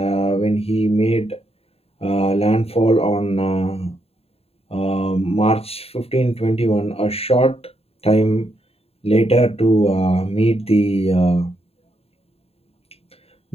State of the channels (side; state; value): right; late; 0.29 ms